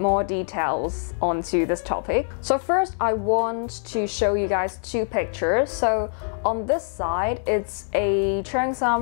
details onto this topic. So first I want to show you guys two pictures. So on this side, it's a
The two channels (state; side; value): silent; right; digital silence